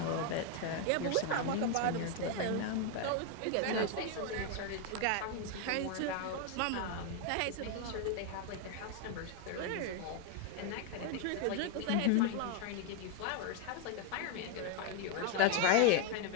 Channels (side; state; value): both; different; correlation 0.01